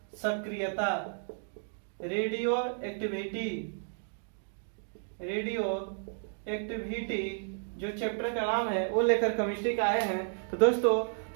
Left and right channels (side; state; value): left; silent; digital silence